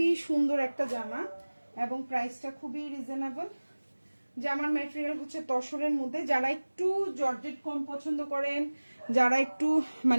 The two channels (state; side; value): inverted; both; correlation -1.00